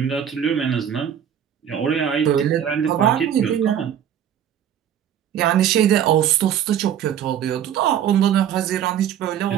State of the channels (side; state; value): left; quieter; 9.6 dB